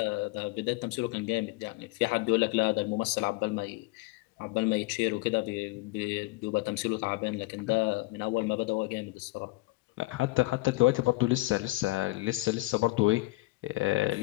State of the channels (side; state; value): right; quieter; 21.0 dB